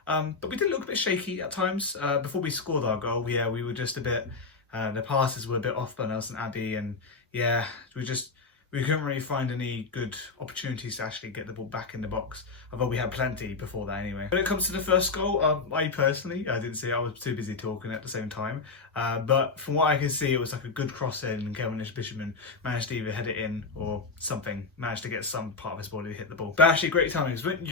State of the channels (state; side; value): quieter; right; 4.3 dB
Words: But we did look a bit shaky at times. Before we scored our goal, yeah, we were just a bit, the passes were a bit off by Nelson Abbey, and yeah, we couldn't really find any good opportunities to actually get the ball back in the box, although we had plenty before that anyway. When it comes to the first goal, I personally, I didn't see it, I was too busy talking at the same time, but from what I could see, it was like a good cross in, and Kevin Bishopman managed to either head it in or something, managed to get some part of his body to hit the ball. But actually great timing, because